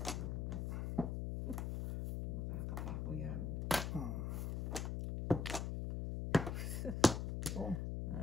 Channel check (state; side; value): noise; left; hum, 1 dB below the sound